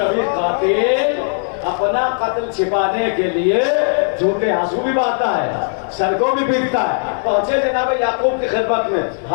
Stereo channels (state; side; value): silent; right; 68 dB below the other